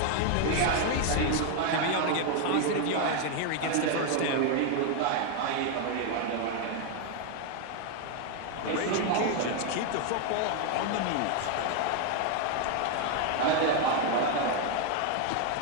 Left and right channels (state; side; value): different; both; correlation 0.01